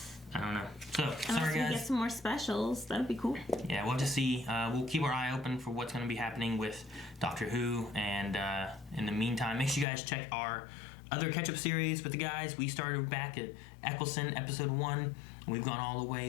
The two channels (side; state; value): right; drops out; at 9.9 s